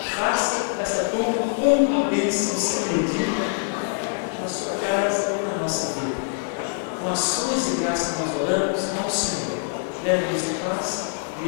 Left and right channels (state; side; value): silent; right; 62 dB below the other